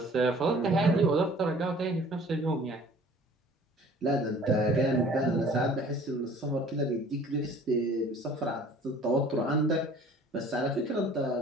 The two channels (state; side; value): normal; both; correlation 0.50